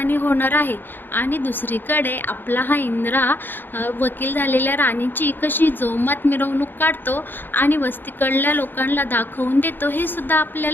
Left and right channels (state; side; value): late; right; 0.095 ms